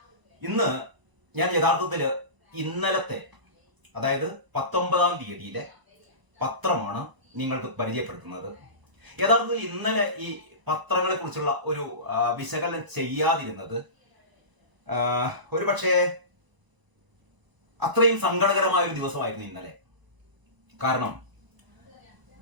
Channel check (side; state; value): left; late; 1.0 ms